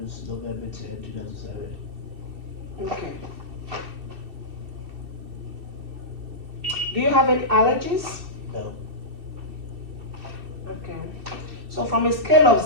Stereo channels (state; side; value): late; left; 2.6 ms